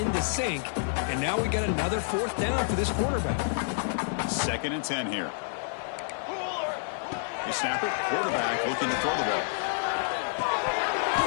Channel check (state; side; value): silent; right; 59 dB below the other